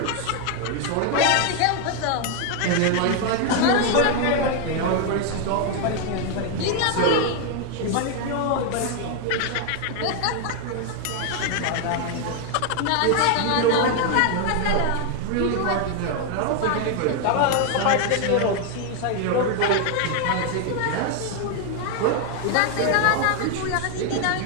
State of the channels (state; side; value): different; both; correlation 0.01